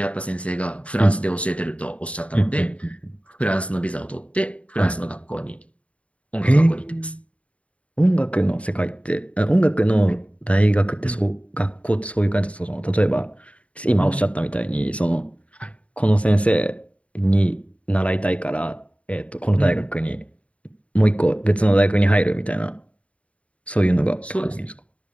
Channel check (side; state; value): right; late; 0.064 ms